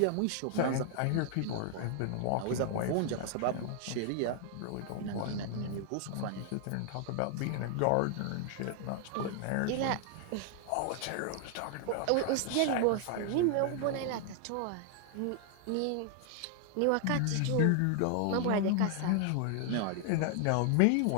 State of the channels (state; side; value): different; both; correlation 0.00